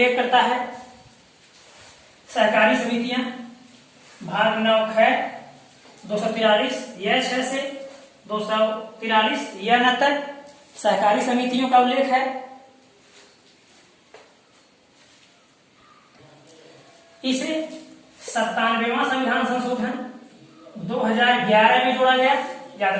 करता है। सहकारी समितियां भाग 9 ख 243 यह 6 से 243 यह न तक सहकारी समितियों का उल्लेख है। इसे 97वां संविधान संशोधन 2011 में जोड़ा गया। याद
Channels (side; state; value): both; identical; correlation 1.00